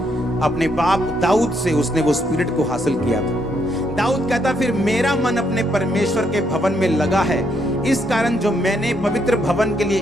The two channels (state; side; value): normal; both; correlation 0.75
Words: बाप दाऊद से उसने वो स्पिरिट को हासिल किया था। दाऊद कहता फिर मेरा मन अपने परमेश्वर के भवन में लगा है, इस कारण जो मैंने पवित्र भवन के लिए